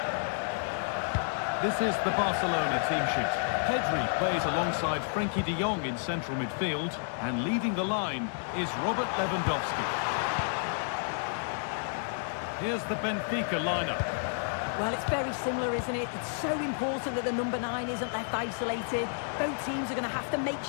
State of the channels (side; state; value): right; silent; digital silence